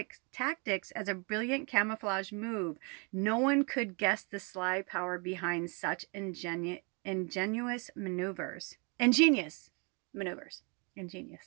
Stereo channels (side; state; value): left; quieter; 33.7 dB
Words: as a brilliant camouflage move. No one could guess the sly power behind such ingenious maneuvers. Ingenious maneuvers.